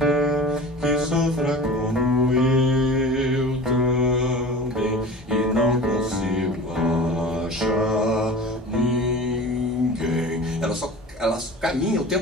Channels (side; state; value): both; normal; correlation 0.37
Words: Que sofra como eu também e não consigo achar ninguém. Ela caminha o